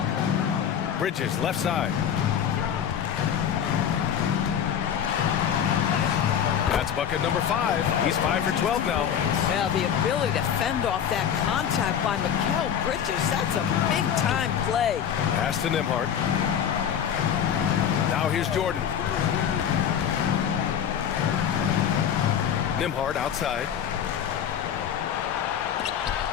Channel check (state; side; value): quieter; right; 8.7 dB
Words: Bridges, left side. That's bucket number 5. He's 5 for 12 now. Yeah, the ability to fend off that contact by Mikal Bridges, that's a big-time play. Pass to Nembhard. Now here's Jordan. Nembhard outside.